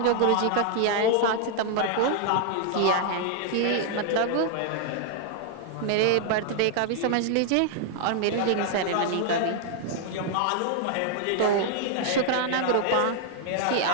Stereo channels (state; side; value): different; both; correlation 0.00